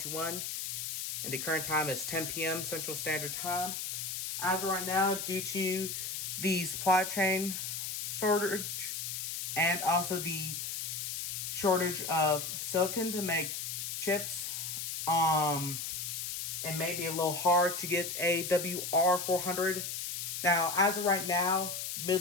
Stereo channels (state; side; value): noise; left; hiss, 4 dB below the sound